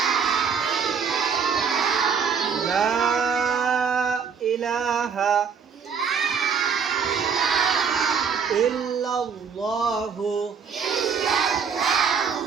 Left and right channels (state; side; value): quieter; left; 6.4 dB